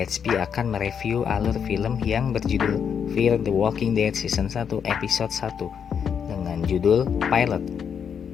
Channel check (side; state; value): right; quieter; 7.4 dB